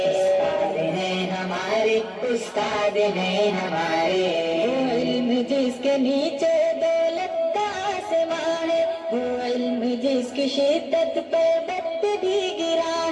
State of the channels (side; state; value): both; identical; correlation 1.00